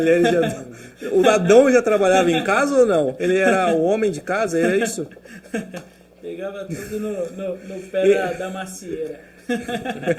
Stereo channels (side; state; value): both; identical; correlation 1.00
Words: de Adão? O Adão já trabalhava em casa ou não? Ele era o homem de casa, era isso? Pegava tudo no pé da macieira.